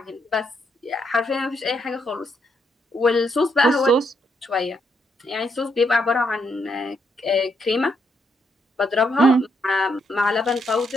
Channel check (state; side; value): normal; both; correlation 0.76